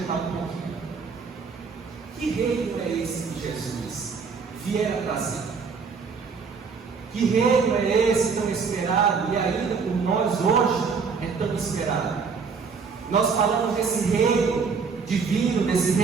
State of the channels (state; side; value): quieter; left; 5.3 dB